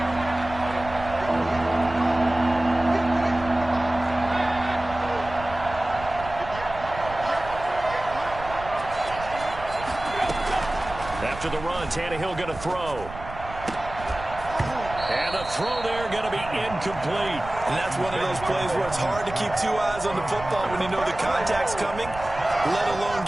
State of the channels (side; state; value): right; noise; rumble, 13 dB below the sound